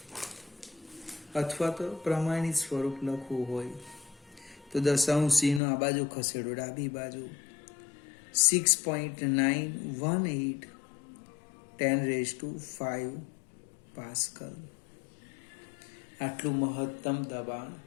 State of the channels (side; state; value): right; drops out; at 5.6 s